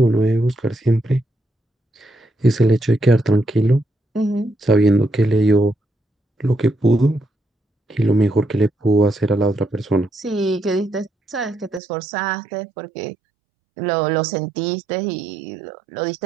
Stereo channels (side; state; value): left; drops out; at 11.8 s